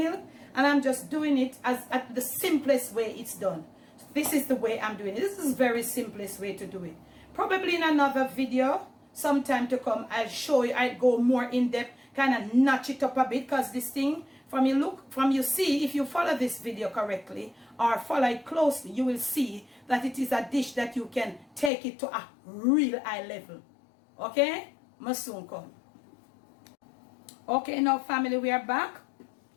and I'm just doing it as at the simplest way it's done. This is the way I'm doing it. This is the very simplest way to do it. Probably in another video, sometime to come, I'll show you, I'll go more in depth, kind of notch it up a bit, because this thing, from you see, if you follow this video correctly, or follow it closely, you will see that it is a dish that you can take it to a real high level. Okay? Must soon come. Okay, now family, we are back,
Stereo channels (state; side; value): drops out; right; at 21.7 s